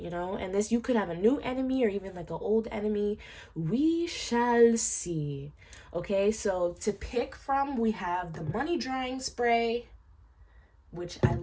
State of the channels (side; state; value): both; identical; correlation 1.00